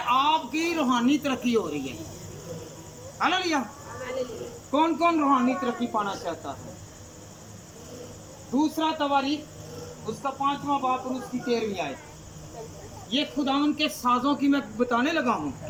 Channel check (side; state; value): both; identical; correlation 1.00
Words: रूहानी तरक्की हो रही है। हालेलुया। कौन कौन रूहानी तरक्की पाना चाहता है? दूसरा तवारीख उसका 5वां बाब और उसकी 13वीं आयत। ये खुदावंद के साजों की मैं बताने लगा हूँ।